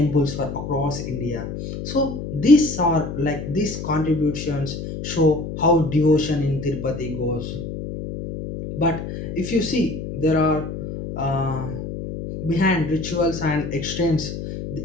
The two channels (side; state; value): left; noise; hum, 7 dB below the sound